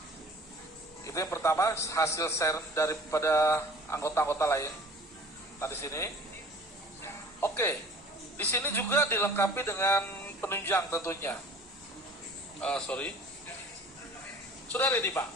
Itu yang pertama, hasil share daripada anggota-anggota lain. Nah di sini, oke, di sini juga dilengkapi dengan penunjang tentunya. Sudah ready Pak.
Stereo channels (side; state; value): both; normal; correlation 0.47